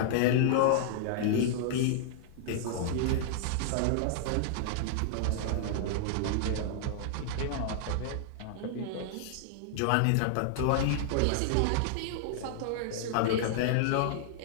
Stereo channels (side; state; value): both; different; correlation -0.01